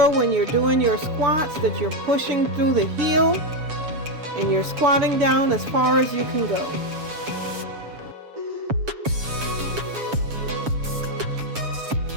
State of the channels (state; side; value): late; left; 7.2 ms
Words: when you're doing your squats that you're pushing through the heel and you're squatting down as far as you can go.